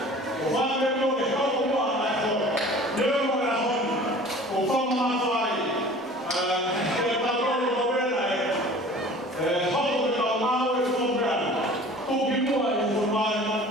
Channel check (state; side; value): normal; both; correlation 0.45